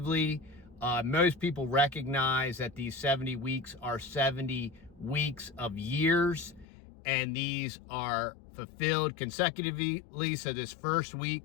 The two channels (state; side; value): drops out; right; at 6.7 s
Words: Most people recognize that these 70 weeks are 70 weeks of years, and these are fulfilled consecutively. So this first week,